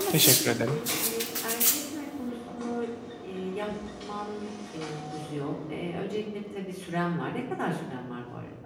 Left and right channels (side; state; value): both; identical; correlation 1.00